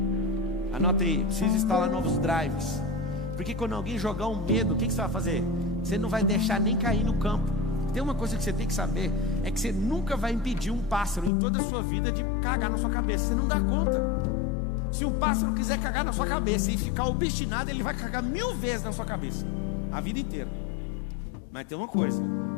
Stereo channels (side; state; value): right; drops out; at 11.3 s